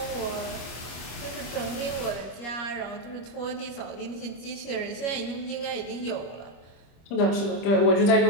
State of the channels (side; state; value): right; late; 25 ms